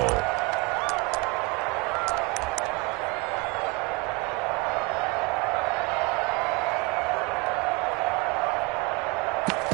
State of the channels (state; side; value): quieter; left; 26.3 dB